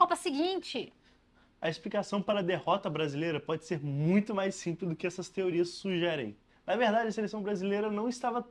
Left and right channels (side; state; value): both; identical; correlation 1.00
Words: seguinte? A explicação para a derrota brasileira pode ser muito mais simples do que essas teorias sugerem. Na verdade, a seleção brasileira não estava